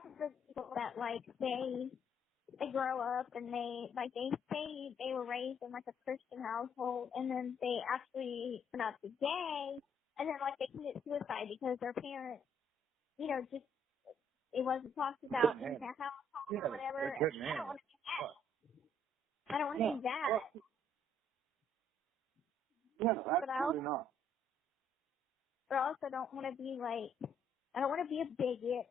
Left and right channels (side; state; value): both; normal; correlation 0.67